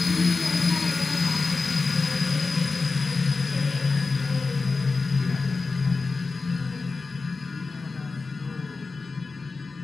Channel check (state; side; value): quieter; right; 4.1 dB